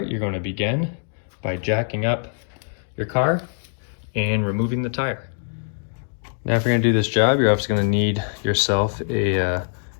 you're going to begin by jacking up your car and removing the tire. Now, if you're gonna do this job, you're obviously gonna need yourself a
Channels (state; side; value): silent; right; digital silence